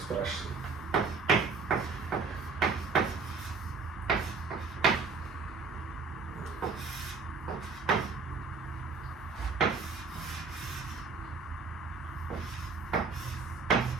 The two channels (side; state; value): left; quieter; 4.6 dB